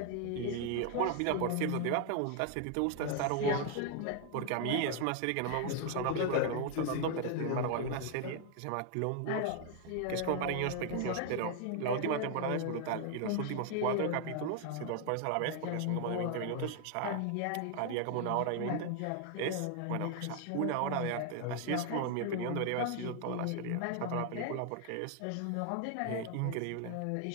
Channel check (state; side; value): different; both; correlation 0.00